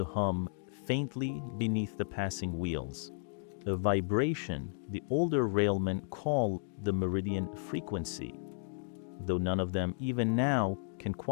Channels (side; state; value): right; silent; digital silence